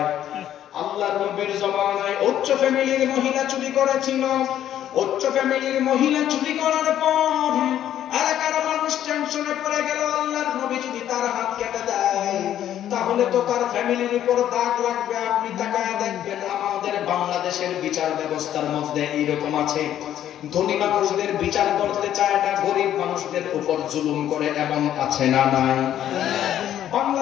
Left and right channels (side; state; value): right; quieter; 11.2 dB